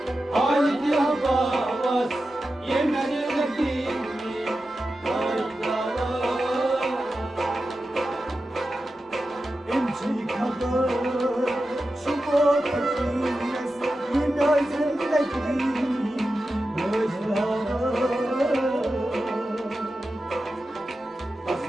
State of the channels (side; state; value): both; normal; correlation 0.92